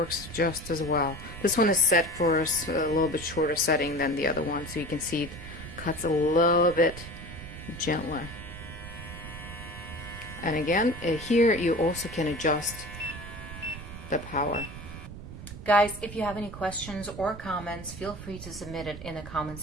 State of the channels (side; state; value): right; noise; rumble, 12 dB below the sound